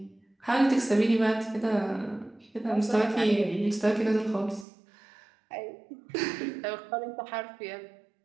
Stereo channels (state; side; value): drops out; left; at 4.7 s